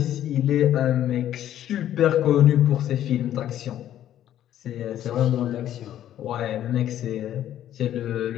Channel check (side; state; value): right; quieter; 11.6 dB